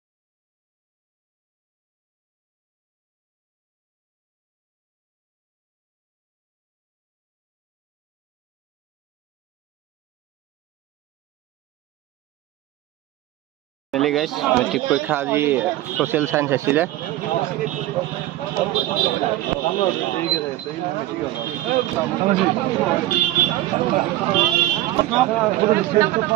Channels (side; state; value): left; quieter; 15.2 dB